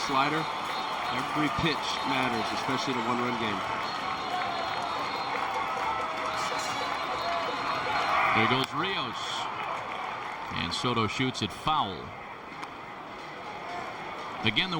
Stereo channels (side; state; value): both; identical; correlation 1.00